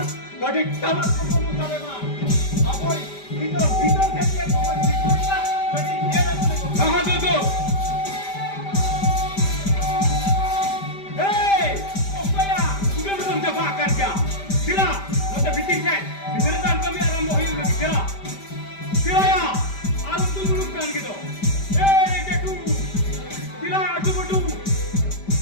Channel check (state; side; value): late; right; 5.1 ms